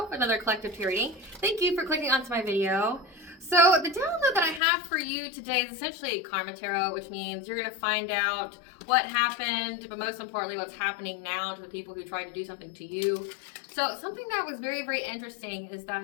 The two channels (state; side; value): drops out; right; at 4.6 s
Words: another collective tarot reading. Thank you for clicking onto my video. So the download that I have for you today is essentially karmatarot, which means you're going to find out what happened, but most importantly, what's happening now to the people who tried to do something to you. So something that was very, very interesting is